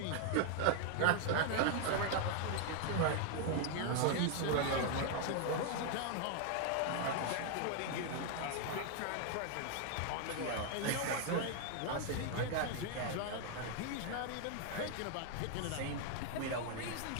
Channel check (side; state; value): both; different; correlation 0.00